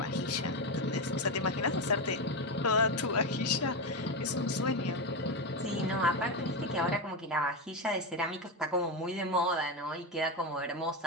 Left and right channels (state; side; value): normal; both; correlation 0.12